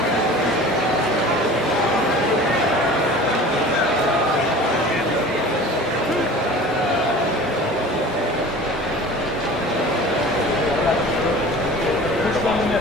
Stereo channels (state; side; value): normal; both; correlation 0.40